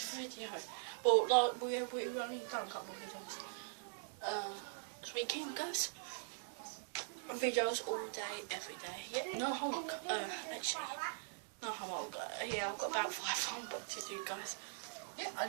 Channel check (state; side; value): silent; left; digital silence